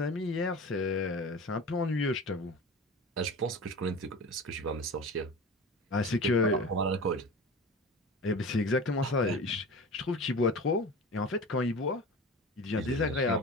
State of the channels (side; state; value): both; normal; correlation 0.33